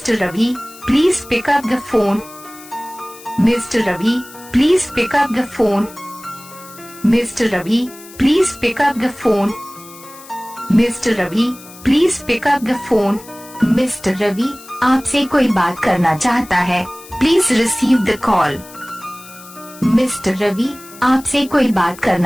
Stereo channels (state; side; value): noise; left; hiss, 19 dB below the sound